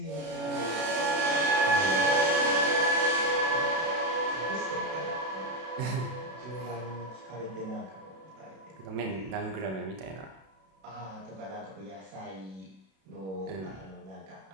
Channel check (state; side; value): late; left; 32 ms